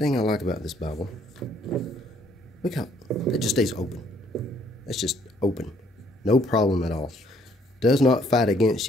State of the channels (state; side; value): normal; both; correlation 0.65